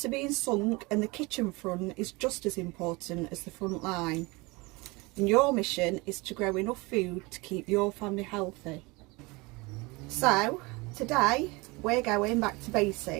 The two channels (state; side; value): quieter; left; 24.8 dB